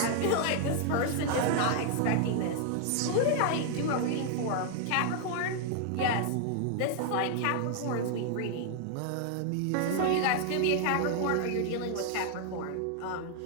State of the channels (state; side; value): different; both; correlation 0.00